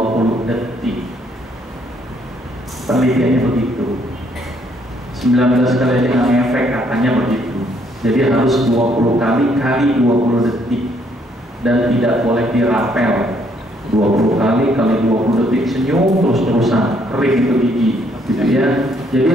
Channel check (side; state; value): both; normal; correlation 0.68